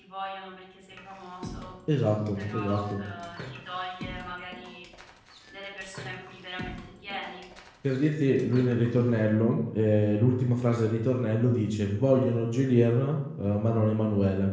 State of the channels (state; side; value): identical; both; correlation 1.00